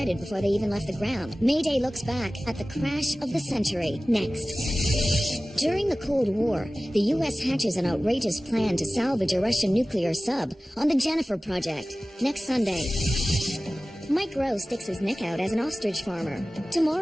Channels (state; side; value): normal; both; correlation 0.97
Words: before they even left the ground. Mayday looks back at the crash of the century. Next. During the Cold War, the U.S. hatches an outrageous plan to salvage a Russian nuclear sub on the Jennifer Project. Next Sunday. Mike Rowe sticks his neck out as an ostrich farmer.